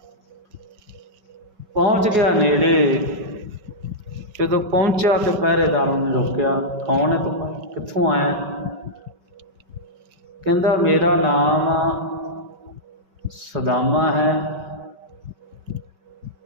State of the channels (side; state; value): left; late; 5.3 ms